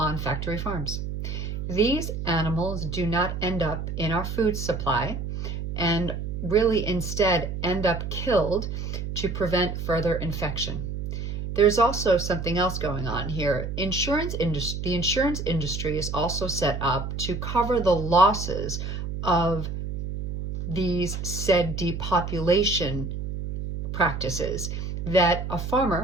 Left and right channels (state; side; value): noise; right; hum, 5 dB below the sound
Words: factory farms. These animals do not end up in our food supply and really instead end up killed to prevent further infection. There's also something else going on here. The insurance industry is also set up to cover the losses of these said depopulation practices, that a